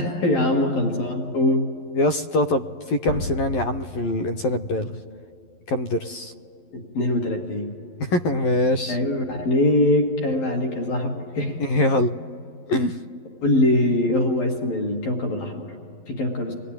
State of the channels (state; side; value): late; right; 11 ms